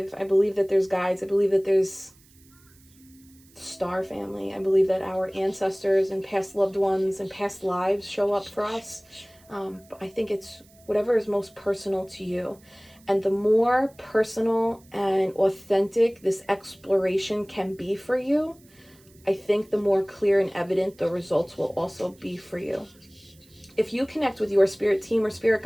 that there's guides. I believe that there's star family. I believe that our ancestors and past loved ones and past lives show up for us. But I think it's whatever is most personal to you. And the more personal and authentic this exploration can be for you, I think the more clear and evident the results will also be for you. If you connect with your spirit team or spirit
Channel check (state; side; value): noise; right; hiss, 28 dB below the sound